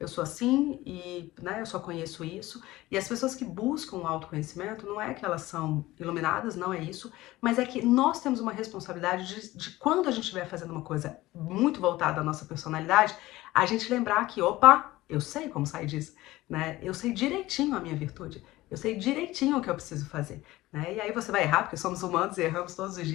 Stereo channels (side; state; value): right; quieter; 17.8 dB